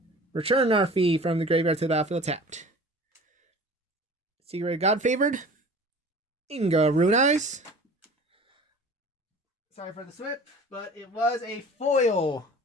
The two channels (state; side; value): normal; both; correlation 0.43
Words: return Narfi from the graveyard to the battlefield tapped. Secret God Favored. Inga Rune Eyes. Sorry for the slip, but it was a foil